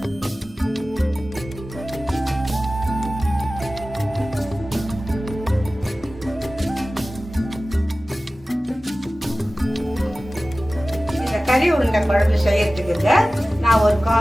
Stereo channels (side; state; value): both; normal; correlation 0.96